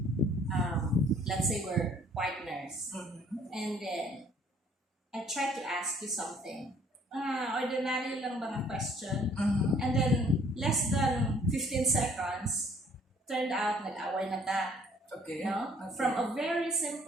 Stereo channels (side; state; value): both; normal; correlation 0.59